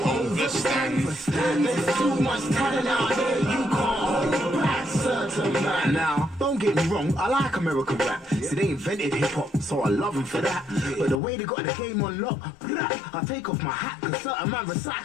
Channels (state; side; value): drops out; right; at 11.2 s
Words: understand. There's too much talent out there, you can't hold back. Certain man. Now, don't get me wrong, I like American rap. See, they invented hip-hop, so I love them for that. But the way they got the game on lock, I take off my hat, cause certain man